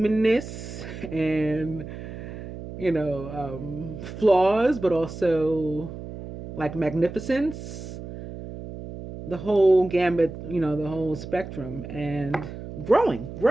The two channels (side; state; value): right; noise; hum, 11 dB below the sound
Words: and, flaws, but also magnificence, the whole gambit, the whole spectrum, and